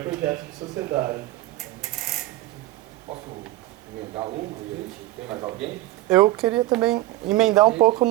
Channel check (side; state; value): left; quieter; 17.1 dB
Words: projeto de sociedade. Posso emendar uma e a gente tem mais alguém? Eu queria também emendar um pouco